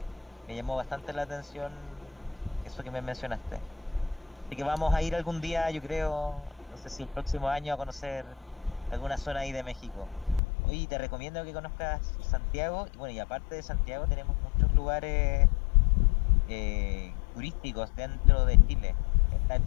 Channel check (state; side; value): drops out; right; at 10.4 s